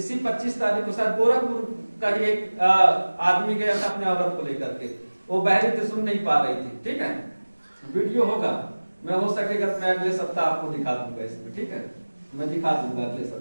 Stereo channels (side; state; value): both; inverted; correlation -1.00